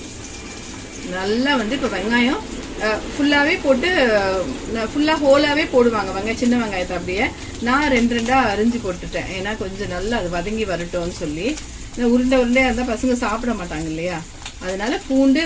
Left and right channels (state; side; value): identical; both; correlation 1.00